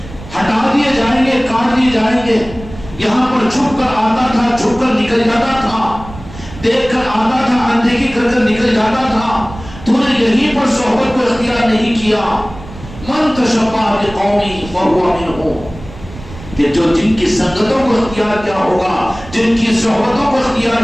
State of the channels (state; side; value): noise; right; rumble, 15 dB below the sound